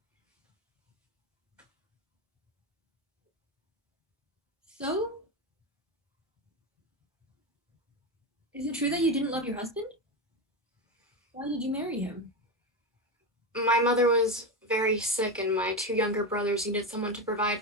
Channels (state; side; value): normal; both; correlation 0.16